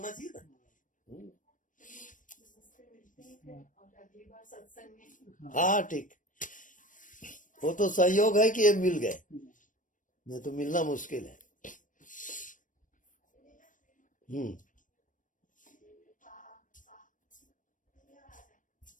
चाहिए ना। और अगली बार सत्संग में। हाँ ठीक, वो तो संयोग है कि ये मिल गए, नहीं तो मिलना मुश्किल है।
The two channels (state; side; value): late; right; 0.38 ms